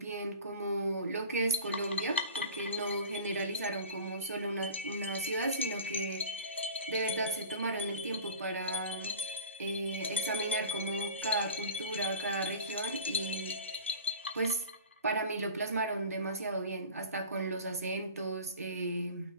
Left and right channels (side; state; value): both; inverted; correlation -0.40